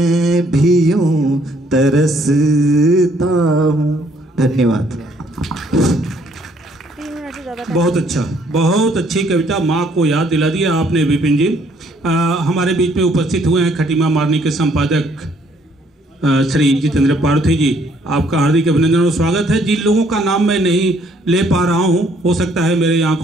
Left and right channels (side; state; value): both; normal; correlation 0.65